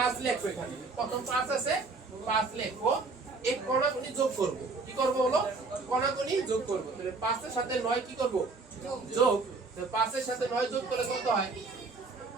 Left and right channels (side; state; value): left; quieter; 3.9 dB